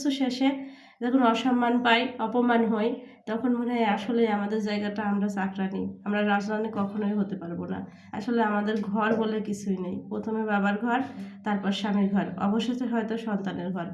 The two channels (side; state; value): both; identical; correlation 1.00